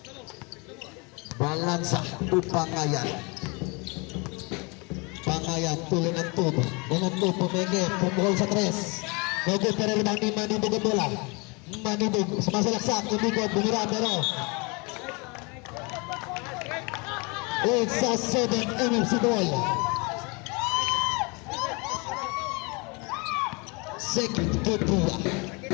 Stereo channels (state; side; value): quieter; right; 29.5 dB